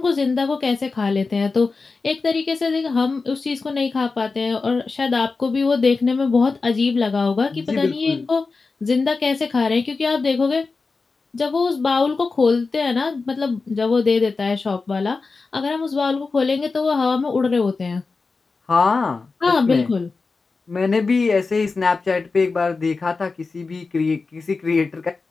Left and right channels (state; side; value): quieter; right; 4.2 dB